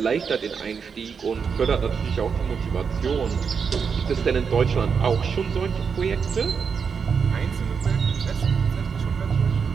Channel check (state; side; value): quieter; left; 6.1 dB